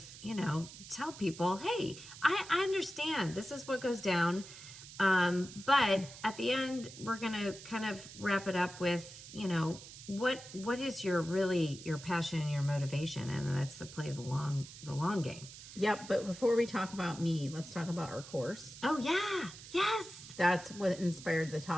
tell people, hey, I understand this is what goes down. But at the end, we're going to kind of wrap it up with, what is your passion and your motivation? And that's to play the long game. Yep. But before we talk about me, let's talk about our course. Oh yeah. Yes. That's what inspired the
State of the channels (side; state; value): right; noise; hiss, 15 dB below the sound